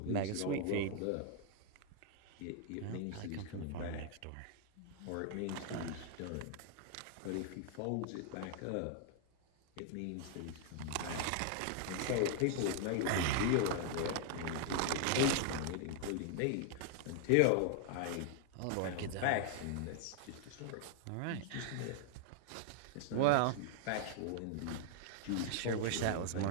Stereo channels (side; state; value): both; different; correlation 0.00